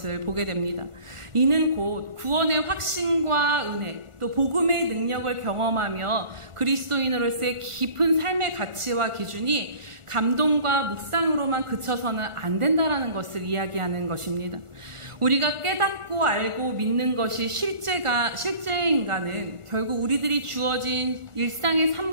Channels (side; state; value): left; late; 1.4 ms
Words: 보게 됩니다. 이는 곧 구원의 확신과 은혜, 또 복음의 능력을 경험하며 그리스도인으로서의 깊은 삶의 가치와 기준이 감동과 묵상으로만 그쳐서는 안 된다라는 것을 이야기하는 것입니다. 우리가 깨닫고 알고 믿는 것이 실제인가는 결국 우리들이 주어진 일상의